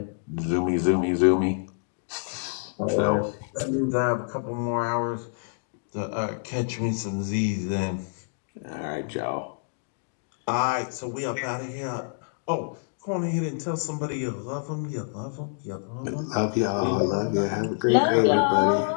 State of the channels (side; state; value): right; silent; digital silence